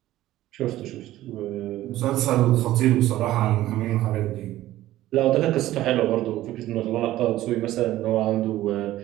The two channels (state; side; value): quieter; left; 14.9 dB